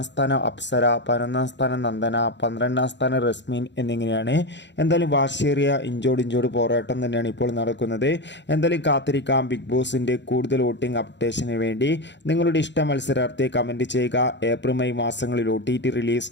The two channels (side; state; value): right; late; 0.52 ms